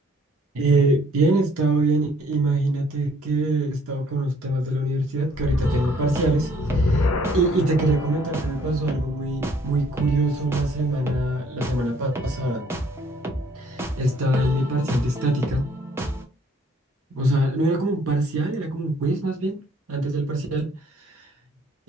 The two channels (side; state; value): both; normal; correlation 0.61